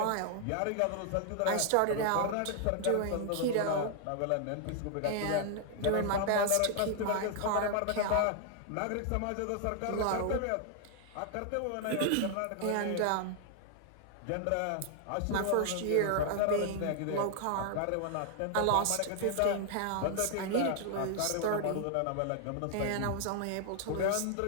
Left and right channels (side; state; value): both; different; correlation 0.00